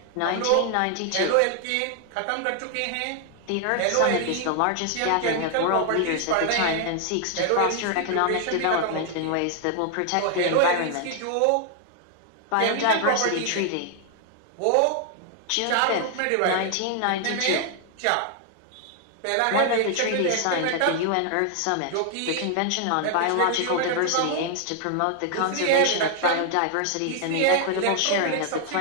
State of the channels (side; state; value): both; different; correlation 0.00